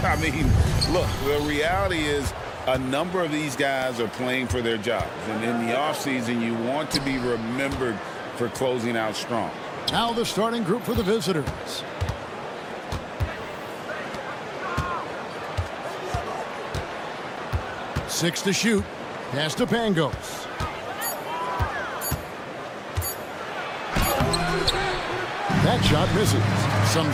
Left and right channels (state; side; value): identical; both; correlation 1.00